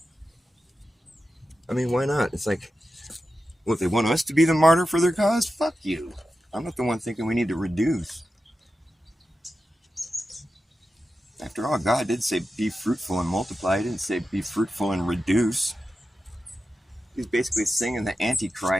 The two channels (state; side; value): normal; both; correlation 0.91